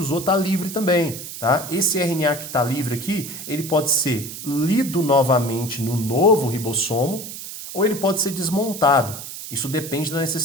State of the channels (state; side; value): noise; right; hiss, 10 dB below the sound